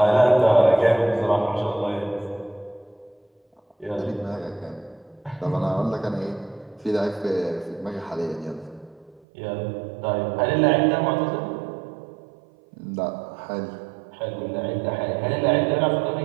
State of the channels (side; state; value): left; drops out; at 9.2 s